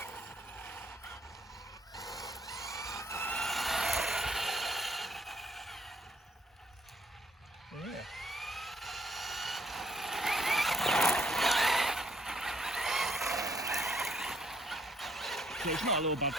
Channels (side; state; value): both; normal; correlation 0.69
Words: so it's not a little bad